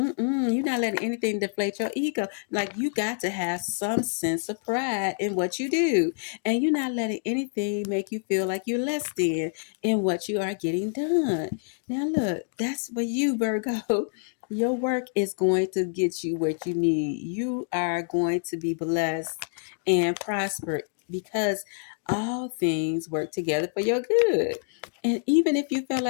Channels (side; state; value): right; silent; digital silence